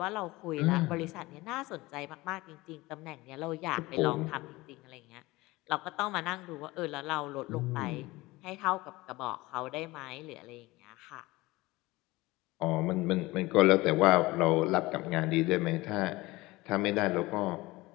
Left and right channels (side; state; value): right; quieter; 20.6 dB